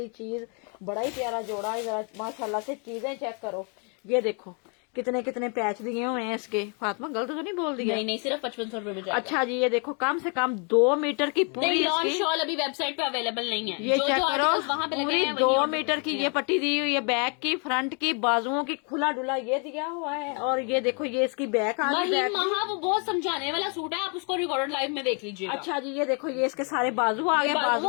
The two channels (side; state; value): right; quieter; 37.4 dB